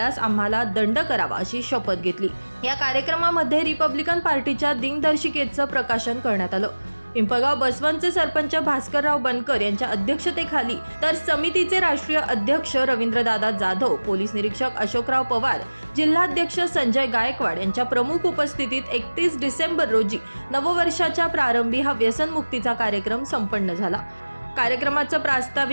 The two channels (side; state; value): both; inverted; correlation -1.00